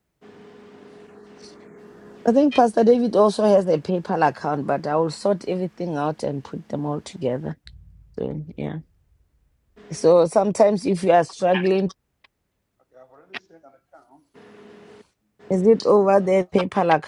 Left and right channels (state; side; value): identical; both; correlation 1.00